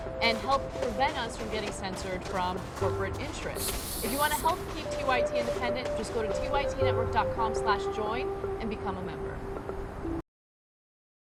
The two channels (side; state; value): both; identical; correlation 1.00